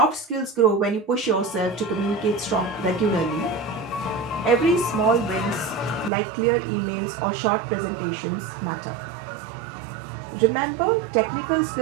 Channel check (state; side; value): drops out; left; at 6.1 s